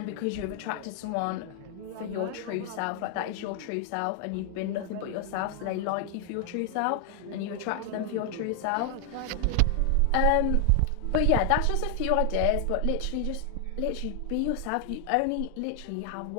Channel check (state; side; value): different; both; correlation 0.00